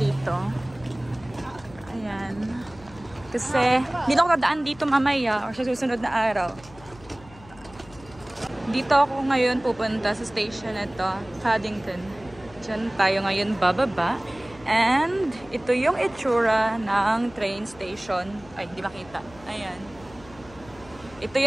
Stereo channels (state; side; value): noise; left; hum, 22 dB below the sound